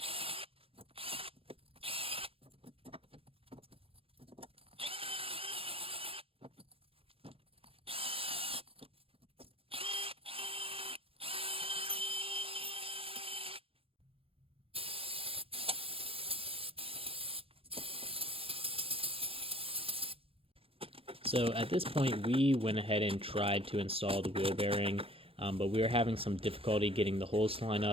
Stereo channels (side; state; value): left; late; 0.27 ms